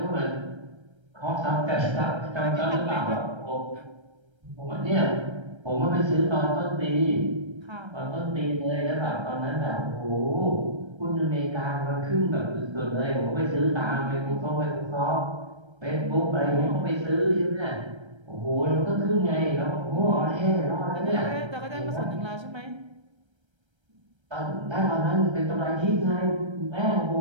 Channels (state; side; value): late; left; 1.3 ms